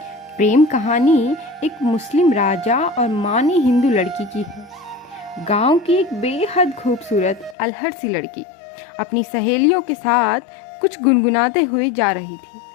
प्रेम कहानी एक मुस्लिम राजा और मानी हिंदू लड़की की है। गांव की एक बेहद खूबसूरत अलहड़ सी लड़की अपनी सहेलियों के साथ कुछ गुनगुनाते हुए जा रही थी।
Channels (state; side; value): drops out; right; at 7.6 s